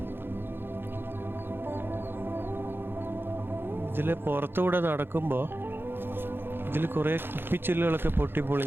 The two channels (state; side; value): late; left; 0.10 ms